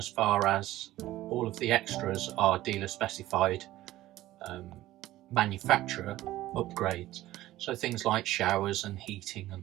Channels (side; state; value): left; quieter; 15.6 dB